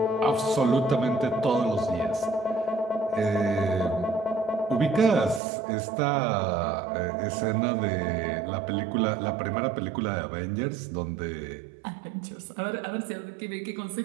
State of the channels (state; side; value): drops out; left; at 5.4 s